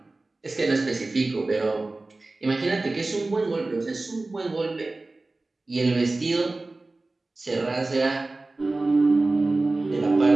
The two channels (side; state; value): left; quieter; 3.2 dB